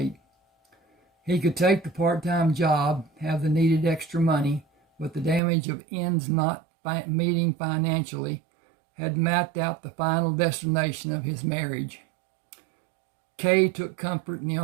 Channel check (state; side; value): drops out; left; at 5.4 s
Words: He could take the part-time job, have the needed extra money, but the damage of ends not meeting financially had mapped out the final destination of his marriage. Kay took comfort in the